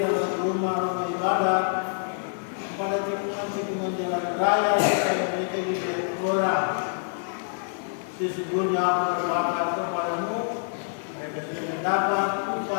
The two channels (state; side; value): silent; right; 61 dB below the other